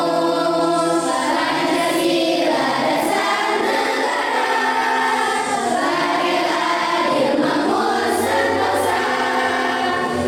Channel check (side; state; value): both; identical; correlation 1.00